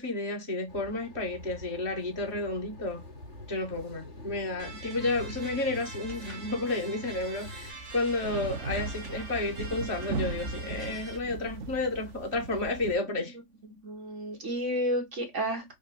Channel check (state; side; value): late; left; 3.5 ms